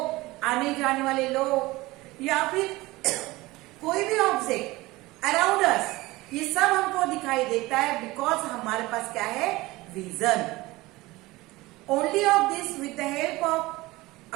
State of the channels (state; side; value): quieter; left; 20.2 dB